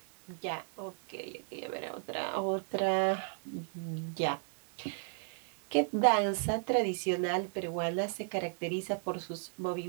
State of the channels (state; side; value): silent; left; 55 dB below the other